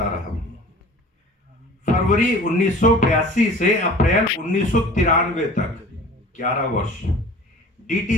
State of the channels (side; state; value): both; normal; correlation 0.44